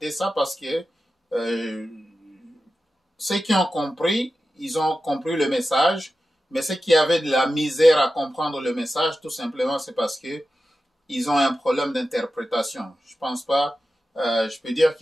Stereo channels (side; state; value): both; normal; correlation 0.93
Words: ça parce que ceux qui ont compris, ils ont compris le message, mais ceux qui avaient de la misère à comprendre le message, tout simplement, c'est parce que ils ont un problème d'interprétation. Je pense pas, je peux dire